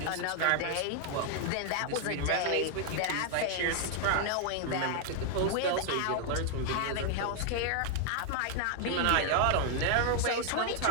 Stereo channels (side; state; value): both; different; correlation 0.00